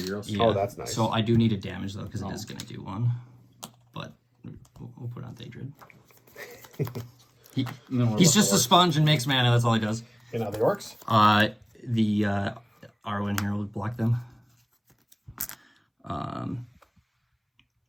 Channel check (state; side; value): identical; both; correlation 1.00